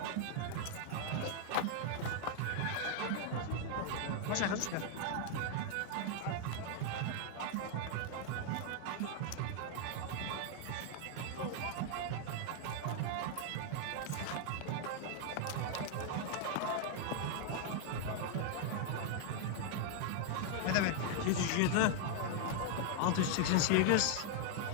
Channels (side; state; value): both; different; correlation 0.00